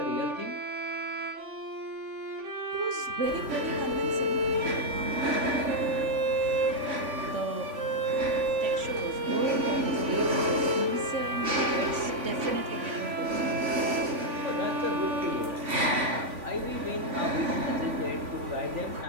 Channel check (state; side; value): late; left; 3.5 ms